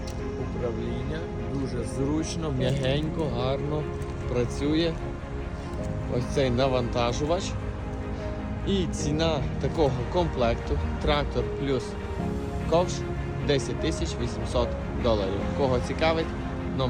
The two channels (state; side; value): identical; both; correlation 1.00